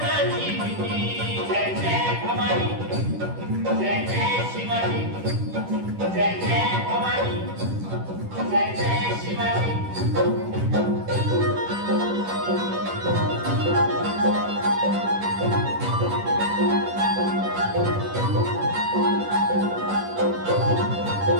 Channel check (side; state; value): left; late; 10 ms